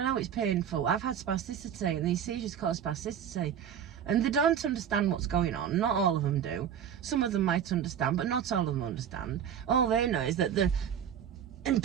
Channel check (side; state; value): left; quieter; 8.8 dB